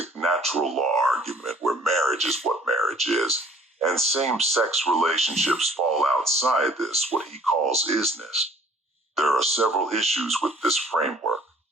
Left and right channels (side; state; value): both; normal; correlation 0.55